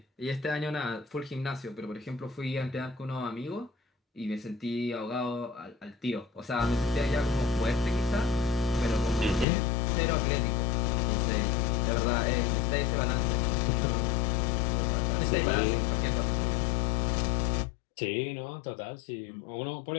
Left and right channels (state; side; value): drops out; right; at 9.5 s